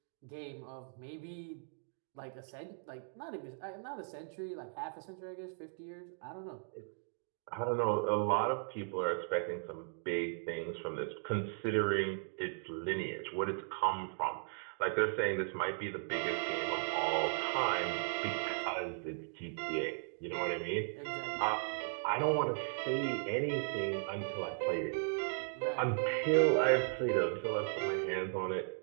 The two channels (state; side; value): silent; left; digital silence